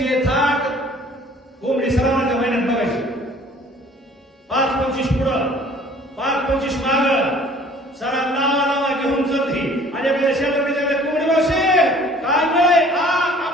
थाट. कोंबडी सरावाच्या महिन्यात बघायची. 5-25 पुढं 5-25 माग, सारा नावा घेऊन चलती. आणि आपल्या शेतात कोंबडी मावशी काय मिळे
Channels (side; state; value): both; normal; correlation 0.52